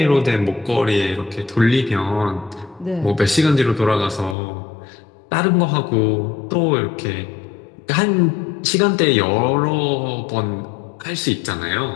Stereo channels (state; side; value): drops out; right; at 4.4 s